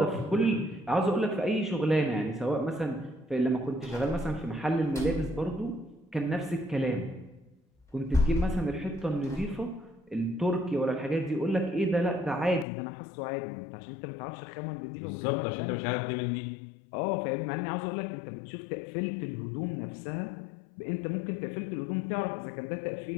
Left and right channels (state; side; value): drops out; right; at 12.7 s